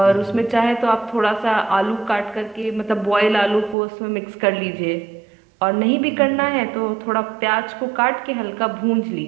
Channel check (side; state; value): left; drops out; at 3.8 s